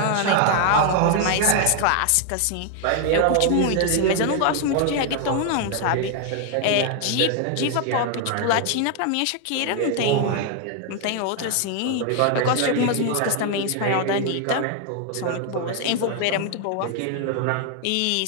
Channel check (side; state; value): both; different; correlation 0.00